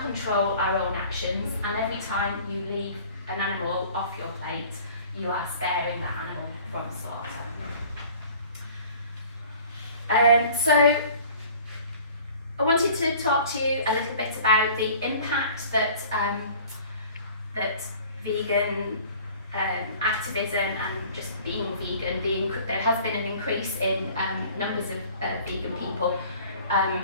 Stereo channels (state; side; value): inverted; both; correlation -0.48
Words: our own actions, and every time you leave an animal off your plate, you are sparing that animal from slaughter. So I wanted to talk to you a little bit about the impact that that vegan activism and just being vegan, there has been an increase in numbers of vegan people.